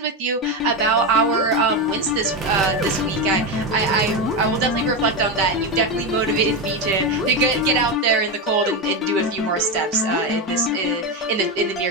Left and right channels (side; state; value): both; normal; correlation 0.13